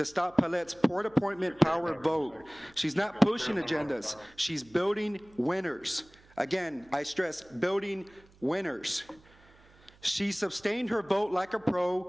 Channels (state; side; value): noise; right; hum, 27 dB below the sound